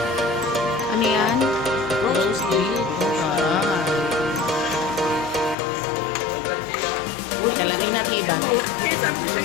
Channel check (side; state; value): right; drops out; at 5.6 s